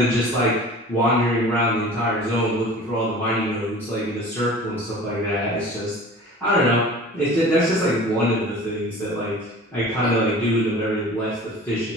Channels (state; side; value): normal; both; correlation 0.42